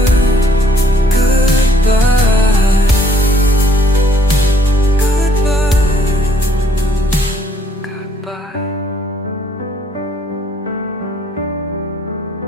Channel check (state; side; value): normal; both; correlation 0.64